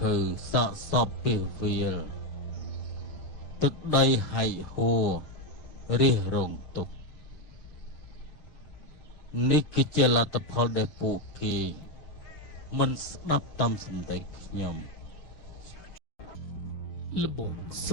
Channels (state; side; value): late; right; 6.5 ms